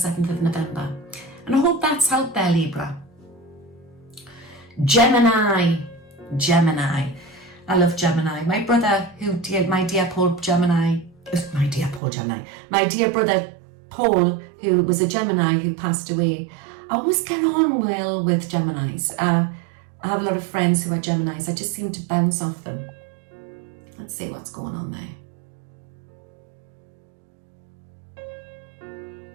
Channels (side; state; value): left; drops out; at 12.0 s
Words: of November. And I hope that's helped there, Libra. Gemini. I love Gemini. My brother, my dear brother Paul, who was a Gemini who passed away. I always get on well with Geminis. I have a lot of friends who are Geminis. I just seem to bounce off them. Let's see what's going on there.